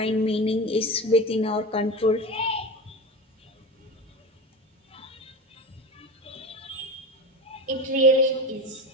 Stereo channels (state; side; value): normal; both; correlation 0.27